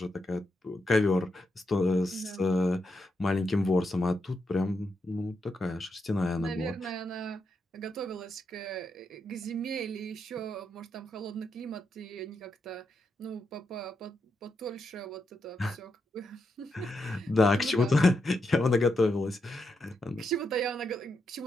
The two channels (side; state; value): both; normal; correlation 0.83